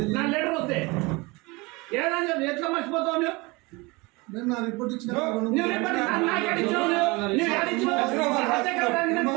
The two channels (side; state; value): left; quieter; 25.2 dB